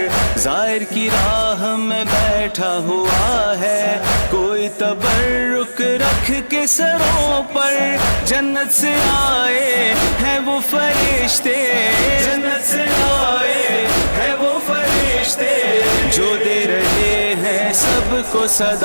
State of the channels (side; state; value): both; inverted; correlation -1.00